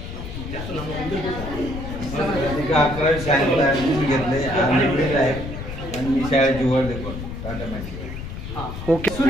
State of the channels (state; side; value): noise; left; rumble, 8 dB below the sound